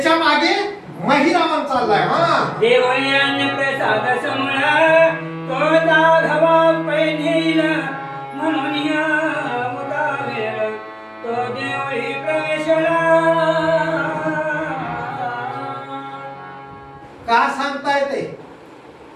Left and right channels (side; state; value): both; identical; correlation 1.00